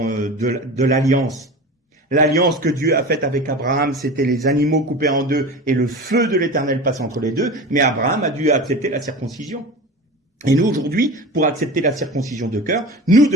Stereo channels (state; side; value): normal; both; correlation 0.32